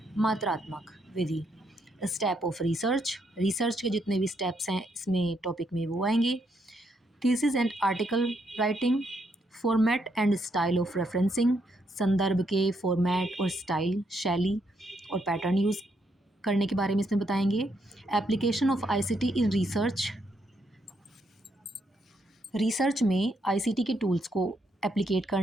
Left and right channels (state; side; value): normal; both; correlation 0.76